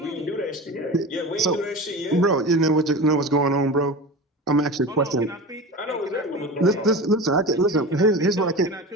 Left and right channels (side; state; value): both; normal; correlation 0.30